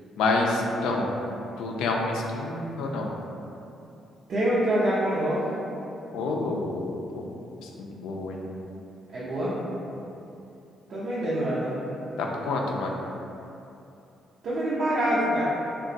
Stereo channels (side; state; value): both; normal; correlation 0.71